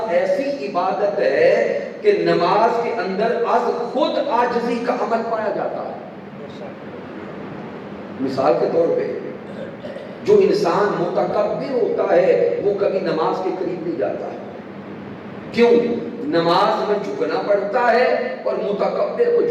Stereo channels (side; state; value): both; identical; correlation 1.00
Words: ایسی عبادت ہے کہ نماز کے اندر از خود عاجزی کا عمل پایا جاتا ہے۔ مثال کے طور پہ جو انسان متکبر ہوتا ہے وہ کبھی نماز کے قریب نہیں جاتا ہے، کیوں؟ نماز میں جھکنا پڑتا ہے اور متکبر کو